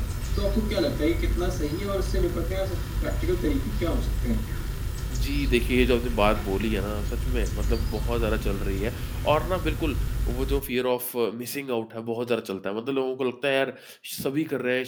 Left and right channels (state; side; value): identical; both; correlation 1.00